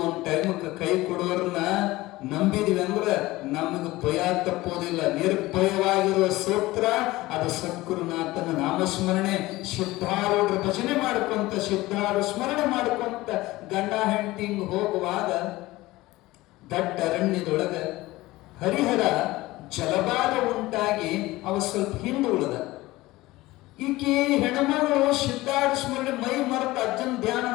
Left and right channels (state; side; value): quieter; right; 18.8 dB